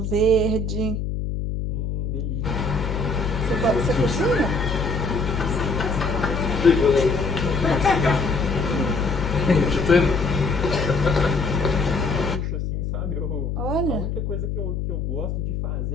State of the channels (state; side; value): noise; left; hum, 2 dB below the sound